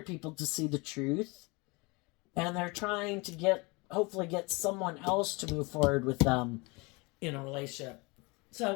people to see the truth, and they're trying to hopefully get someone else to move forward with them in a relationship.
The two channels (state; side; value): quieter; right; 27.0 dB